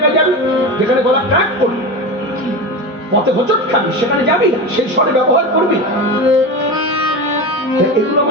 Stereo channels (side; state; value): both; normal; correlation 0.24